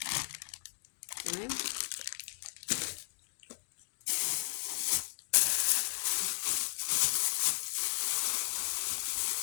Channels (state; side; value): silent; right; digital silence